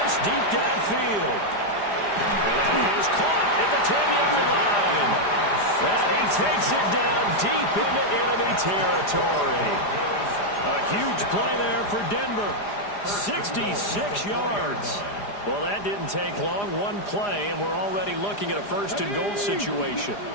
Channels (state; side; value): late; right; 4.9 ms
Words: this deep downfield. And that is caught at the 10-yard line. And he takes it down deep into enemy territory. A huge play there for Denver. 66 yards. Well, that didn't take long. One play, and we're already looking at a 1st and goal situation.